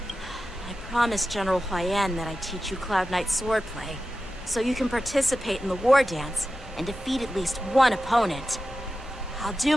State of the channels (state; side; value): normal; both; correlation 0.93